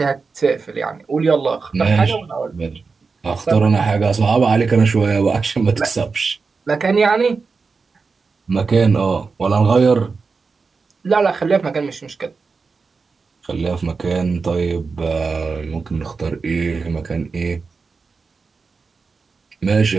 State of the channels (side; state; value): left; quieter; 4.6 dB